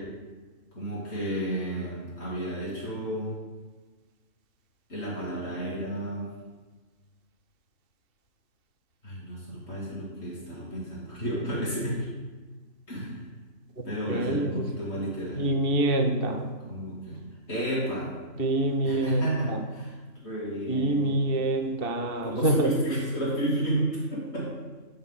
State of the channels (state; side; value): late; right; 3.2 ms